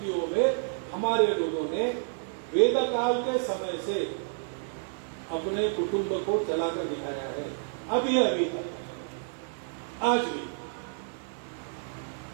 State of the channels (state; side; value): silent; left; digital silence